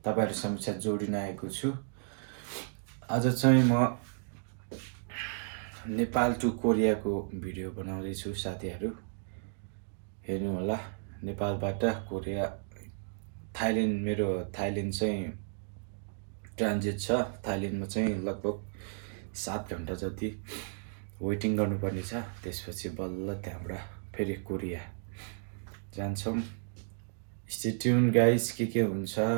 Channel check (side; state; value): left; silent; digital silence